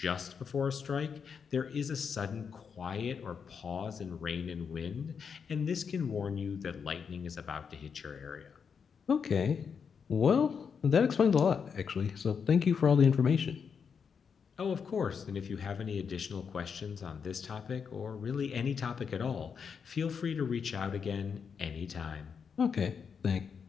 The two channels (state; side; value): quieter; right; 6.4 dB